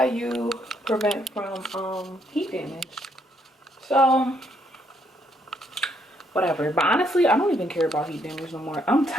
you prevent from heat damage. So, whatever. But honestly, I don't even care about heat damage no more. I'm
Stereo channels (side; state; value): both; normal; correlation 0.72